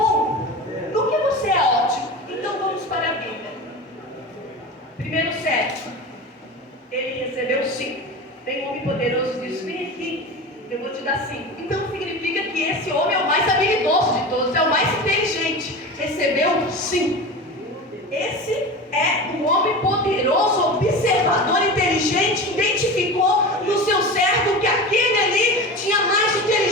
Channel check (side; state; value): both; normal; correlation 0.29